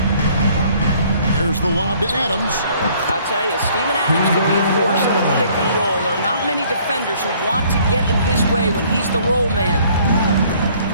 Here's the lob to Adams. I'll tell you, Steven Adams could be a force in the pick and roll. There are not many defenders who want to get in his way when he's the roll man.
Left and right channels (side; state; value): both; inverted; correlation -0.59